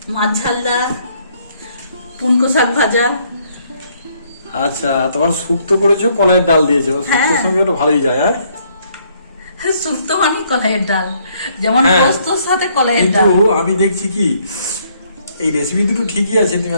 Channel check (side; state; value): both; inverted; correlation -0.68